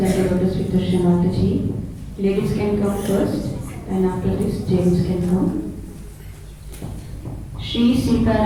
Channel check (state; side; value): identical; both; correlation 1.00